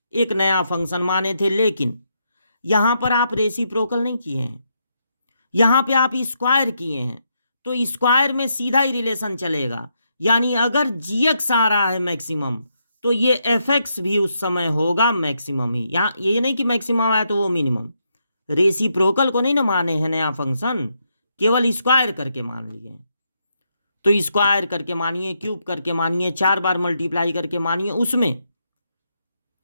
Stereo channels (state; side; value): inverted; both; correlation -0.79